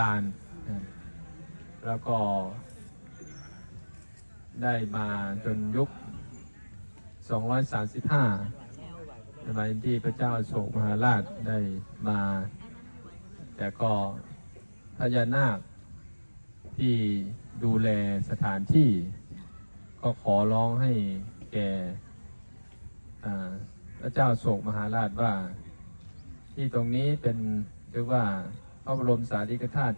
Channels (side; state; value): both; inverted; correlation -1.00